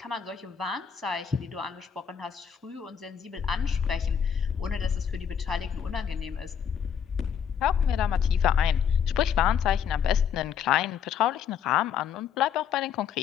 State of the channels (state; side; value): quieter; right; 7.9 dB